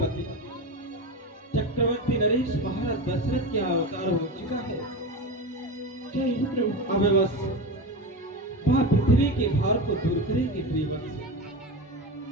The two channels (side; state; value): both; normal; correlation 0.22